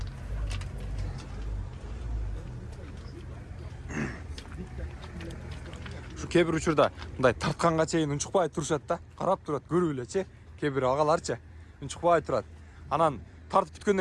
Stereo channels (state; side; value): identical; both; correlation 1.00